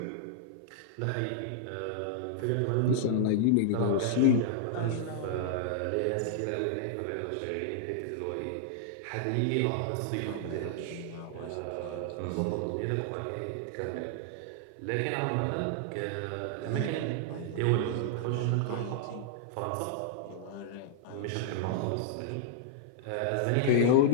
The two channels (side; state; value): both; different; correlation -0.01